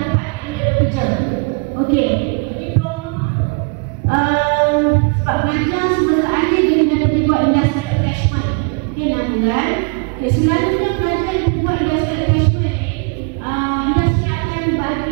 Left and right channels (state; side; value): quieter; left; 35.8 dB